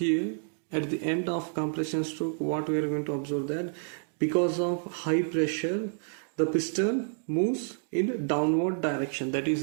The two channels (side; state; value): left; silent; digital silence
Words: at the end of compression stroke. What we are going to observe that because of high pressure the piston moves in downward direction. That is,